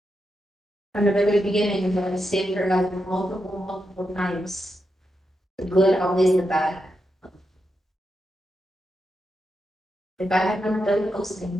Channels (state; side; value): normal; both; correlation 0.86